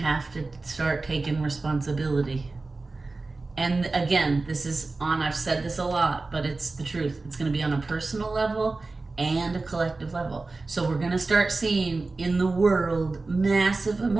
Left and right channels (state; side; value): quieter; left; 3.5 dB